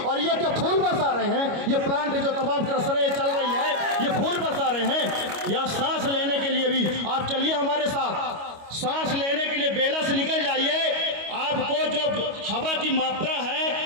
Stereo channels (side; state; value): left; late; 25 ms